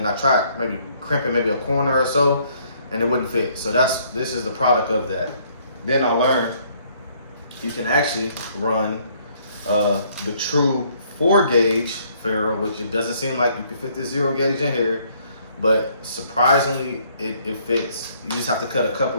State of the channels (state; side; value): inverted; both; correlation -0.65